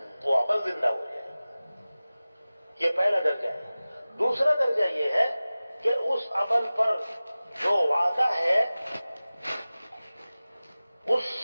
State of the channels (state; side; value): inverted; both; correlation -0.97